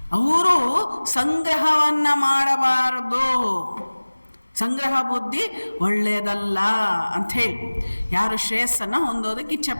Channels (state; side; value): inverted; both; correlation -1.00